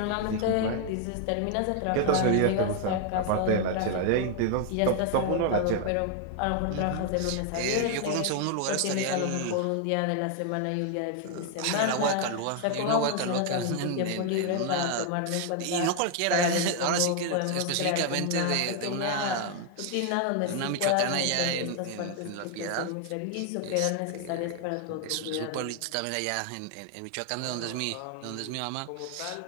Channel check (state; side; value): different; both; correlation 0.00